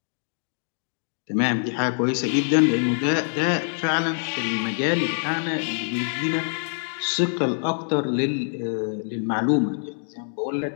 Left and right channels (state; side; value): silent; right; digital silence